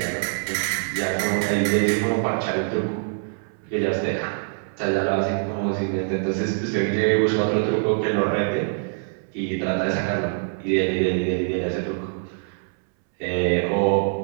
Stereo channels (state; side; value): silent; left; 63 dB below the other